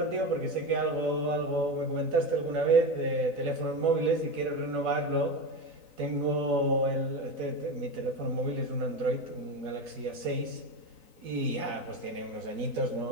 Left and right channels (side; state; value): left; late; 4.0 ms